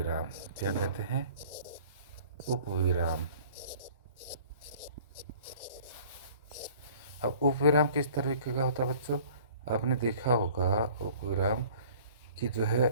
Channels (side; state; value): both; inverted; correlation -0.50